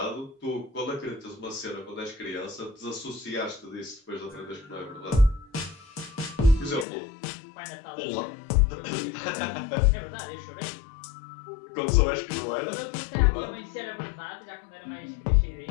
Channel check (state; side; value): drops out; right; at 6.9 s